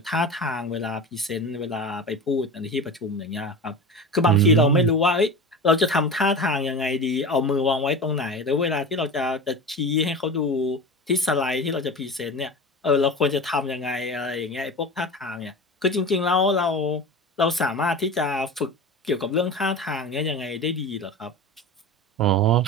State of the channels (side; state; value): both; normal; correlation 0.30